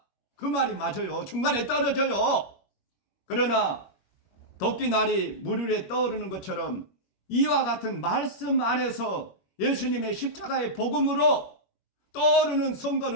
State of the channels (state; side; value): late; right; 21 ms